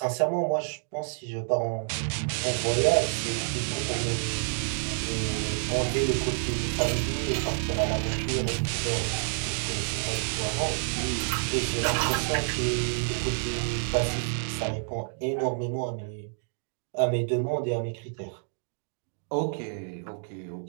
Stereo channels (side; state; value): left; silent; 59 dB below the other